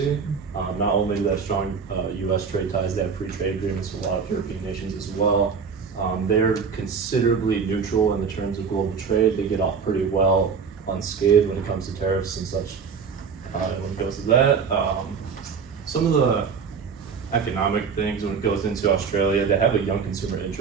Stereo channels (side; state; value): left; quieter; 5.9 dB